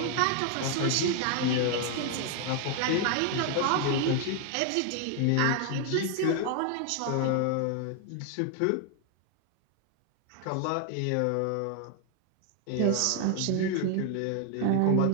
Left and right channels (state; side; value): different; both; correlation 0.00